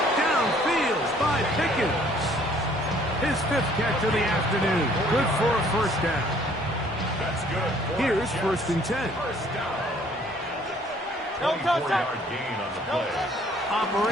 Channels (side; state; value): both; normal; correlation 0.59